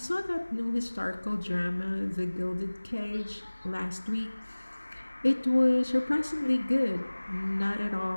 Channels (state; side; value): inverted; both; correlation -1.00